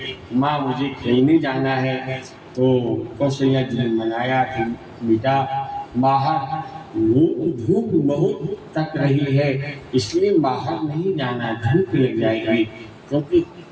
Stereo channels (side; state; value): both; identical; correlation 1.00